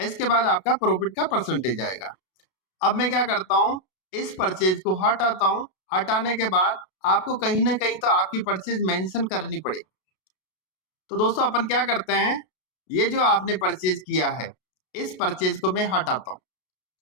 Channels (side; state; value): right; late; 32 ms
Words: बाद आपका प्रॉफिट का परसेंटेज आएगा। अब मैं क्या करता हूँ, इस परचेज को हटाता हूँ। हटाने के बाद आपको कहीं ना कहीं तो आपकी परचेज मेंशन करनी पड़ेगी। तो दोस्तों अपन क्या करते हैं, ये जो आपने परचेज किया है इस परचेज को मैं हटाता हूँ।